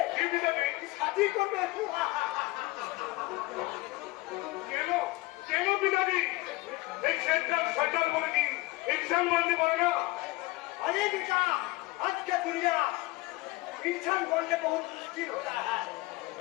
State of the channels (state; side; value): quieter; right; 21.3 dB